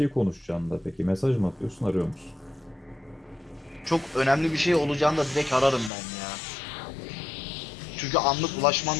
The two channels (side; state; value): right; drops out; at 5.9 s